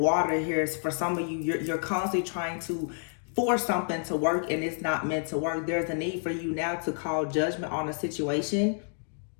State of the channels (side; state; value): right; silent; 55 dB below the other